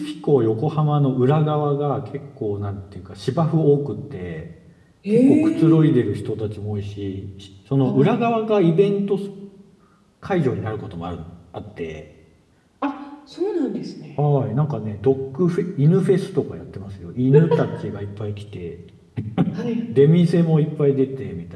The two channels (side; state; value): both; identical; correlation 1.00